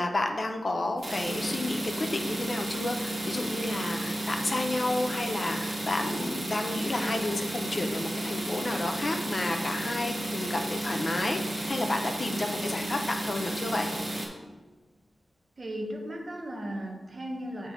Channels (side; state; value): both; normal; correlation 0.93